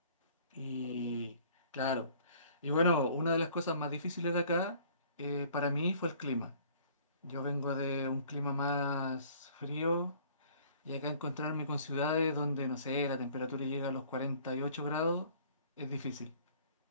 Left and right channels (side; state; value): both; inverted; correlation -0.54